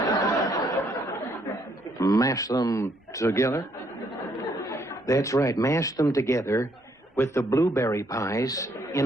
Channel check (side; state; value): both; normal; correlation 0.70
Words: Mash them together? That's right, mash them together with the blueberry pies